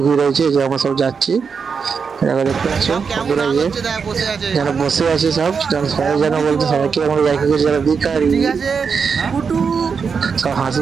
ভিড় হয়েছে। যে আমরা সব যাচ্ছি, দেখো, দেখতে পাচ্ছ সব কেমন বন্ধুরা, নাচ যে হচ্ছে দেখ বসে আছে। যারা বসে আছে সব, সবাই যেন পুটি বলতে, দিব সবাইকে আমরা দেখে গেছি যারা ভিখারি, ঠিক আছে পুটু সব হাসি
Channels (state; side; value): quieter; left; 5.8 dB